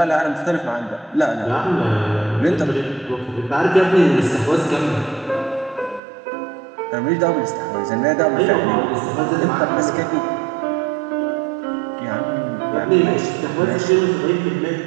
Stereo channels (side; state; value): left; drops out; at 6.0 s